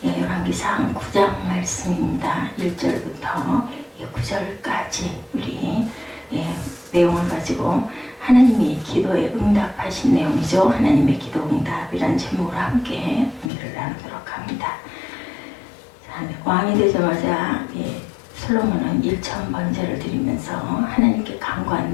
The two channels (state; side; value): drops out; right; at 13.5 s